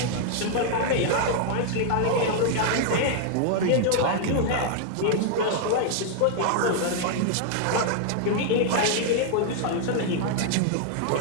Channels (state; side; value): different; both; correlation 0.00